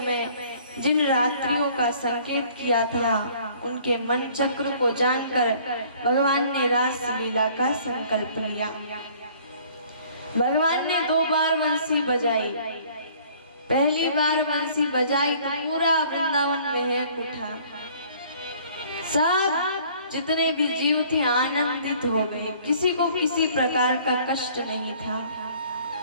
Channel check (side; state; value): both; inverted; correlation -0.55